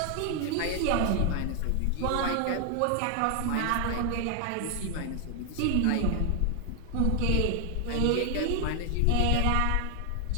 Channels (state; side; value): different; both; correlation 0.00